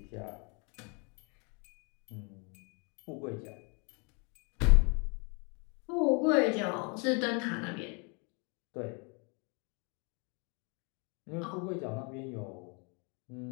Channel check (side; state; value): right; quieter; 33.8 dB